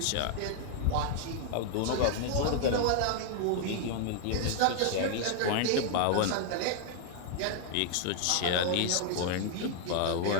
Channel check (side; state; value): both; different; correlation 0.00